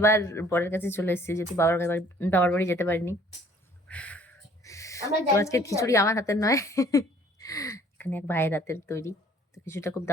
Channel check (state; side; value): normal; both; correlation 0.57